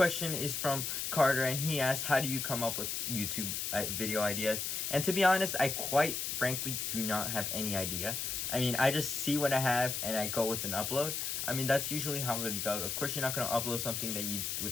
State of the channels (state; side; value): noise; left; hiss, 2 dB below the sound